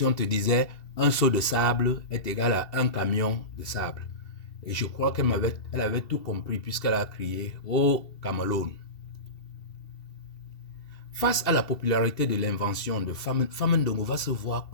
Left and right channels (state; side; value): late; right; 2.7 ms